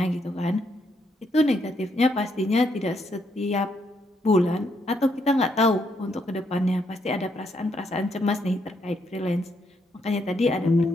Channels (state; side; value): normal; both; correlation 0.75